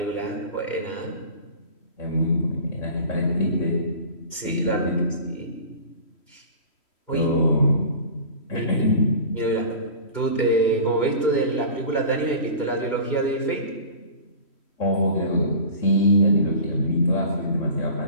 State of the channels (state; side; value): late; right; 3.1 ms